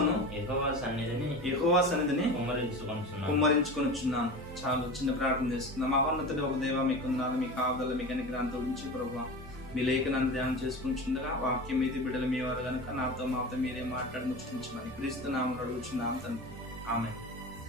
యెహోవా సన్నిధిని కుమ్మరించుకొనుచున్నాను. చాలు, చిన్న ప్రార్థన చేసుకుందాం. మహోన్నతుడు ఒక దేవ, మీకు వందనాలు, మీ కాపుదల, మీ కనికరాంతో ఉంచి ప్రభువా, మీ లేఖనాన్ని ధ్యానం చేసుకుంటుండగా వాక్యం మీది బిడ్డలు మీ వారు కనుక నాతో మాతో మీరే మాట్లాడి ముచ్చించమని క్రీస్తు నామములో అడుగుచున్నాం తండ్రి. ఆమేన్.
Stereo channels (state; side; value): normal; both; correlation 0.30